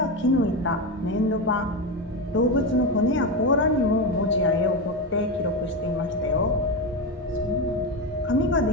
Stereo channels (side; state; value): both; normal; correlation 0.15